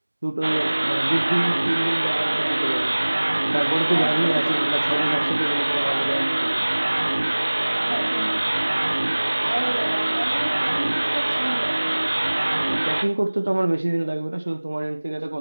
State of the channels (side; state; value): both; inverted; correlation -1.00